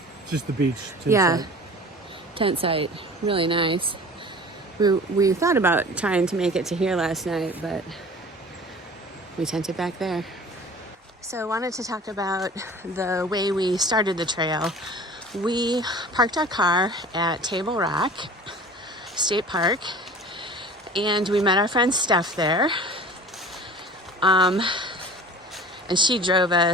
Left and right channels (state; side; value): normal; both; correlation 0.42